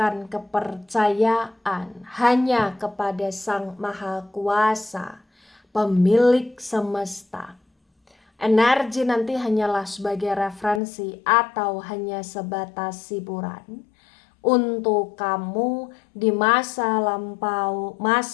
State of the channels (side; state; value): right; drops out; at 10.8 s